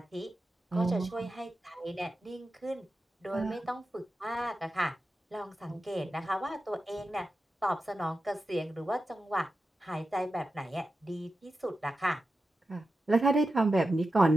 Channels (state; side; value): normal; both; correlation 0.91